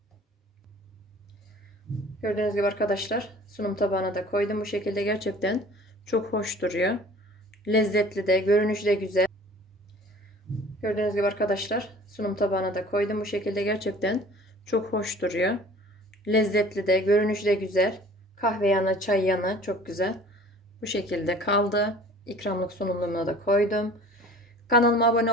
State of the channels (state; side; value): normal; both; correlation 0.47